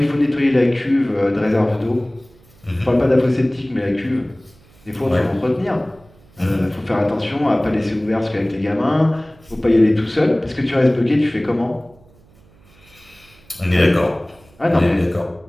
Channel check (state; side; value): noise; right; hum, 29 dB below the sound